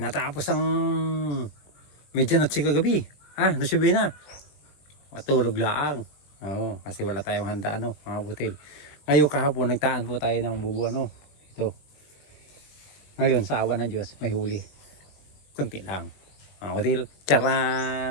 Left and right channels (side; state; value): right; late; 20 ms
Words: ang medyanotsi kagabi. Nasubi na. Matulog laang. Oo, kasi wala tayong handa mga butil. Ngayon kahapon nagtaan po tayo ng bubu Ito. Ngayon sa awa ng Diyos may huli. Kunti lang. Mga butil.